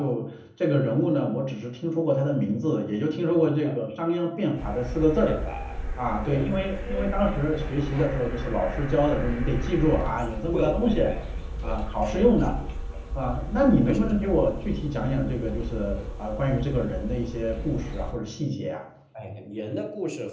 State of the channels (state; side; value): identical; both; correlation 1.00